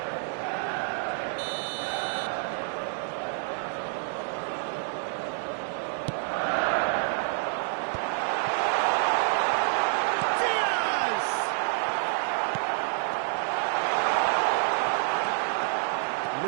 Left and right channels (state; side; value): silent; left; 59 dB below the other